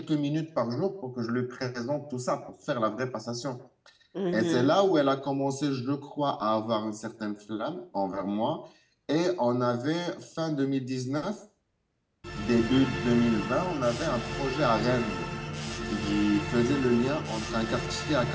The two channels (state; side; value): identical; both; correlation 1.00